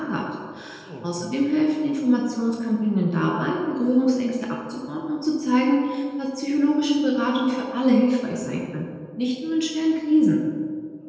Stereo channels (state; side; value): identical; both; correlation 1.00